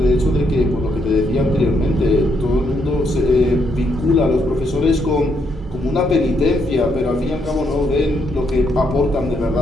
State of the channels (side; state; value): both; normal; correlation 0.75